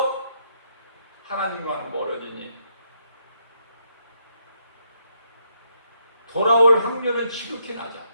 하나님과는 멀어지니 돌아올 확률은 지극히 낮아.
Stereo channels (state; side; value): inverted; both; correlation -0.75